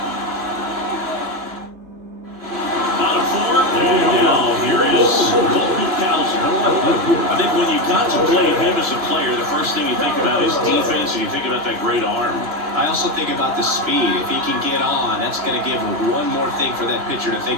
Bottom 4. And now here is I think when you contemplate him as a player, the first thing you think about is defense, and you think about that great arm. I also think about the speed. If he can get on, that's going to give him one more thing for that pitcher to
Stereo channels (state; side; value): late; left; 3.0 ms